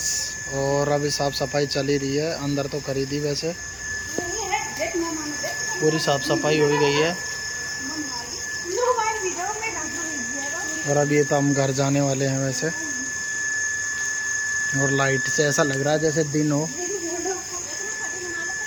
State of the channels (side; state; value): both; identical; correlation 1.00